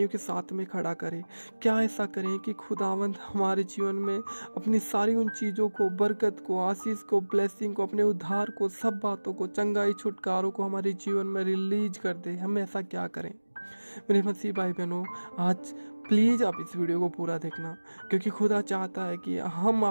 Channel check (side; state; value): both; inverted; correlation -1.00